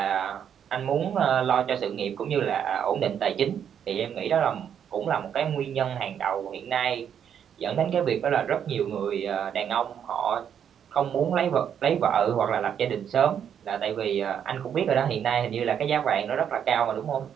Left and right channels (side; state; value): left; quieter; 8.5 dB